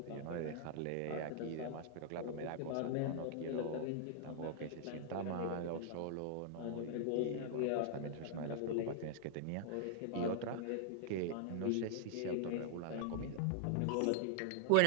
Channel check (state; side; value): different; both; correlation -0.01